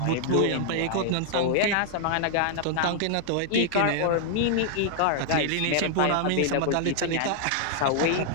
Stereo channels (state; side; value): different; both; correlation 0.00